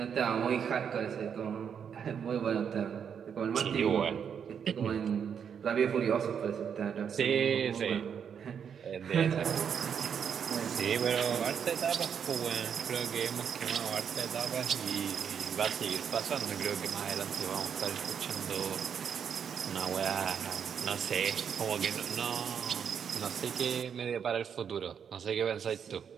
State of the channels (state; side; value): quieter; left; 7.5 dB